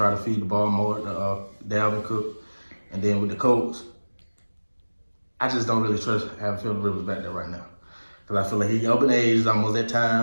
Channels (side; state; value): both; inverted; correlation -1.00